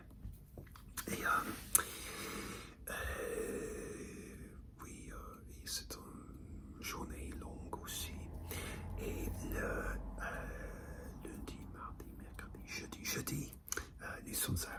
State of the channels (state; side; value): identical; both; correlation 1.00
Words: Et oui, et c'est une journée longue aussi. Et le lundi, mardi, mercredi, jeudi, nous sommes